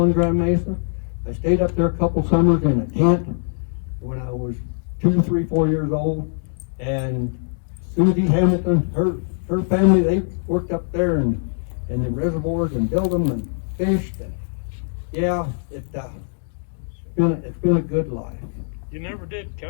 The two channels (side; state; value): right; silent; digital silence